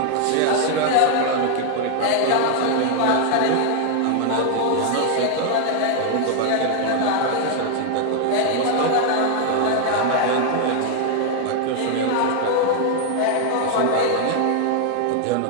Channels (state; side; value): different; both; correlation 0.00